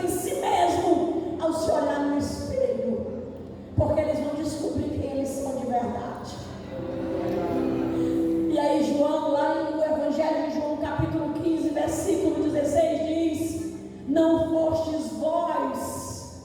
em si mesmo ao se olhar no espelho, porque eles vão descobrir quem eles são de verdade. E aí João, lá no Evangelho de João, capítulo 15, versículo 16, diz, não fostes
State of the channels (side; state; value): both; identical; correlation 1.00